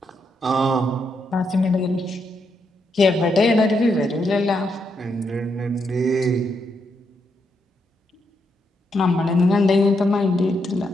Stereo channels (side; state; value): both; normal; correlation 0.80